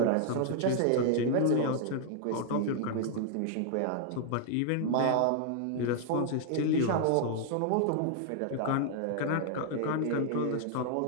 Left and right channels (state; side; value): different; both; correlation -0.01